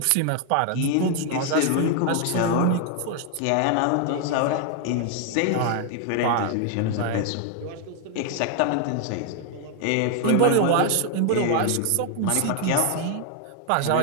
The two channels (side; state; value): both; different; correlation 0.00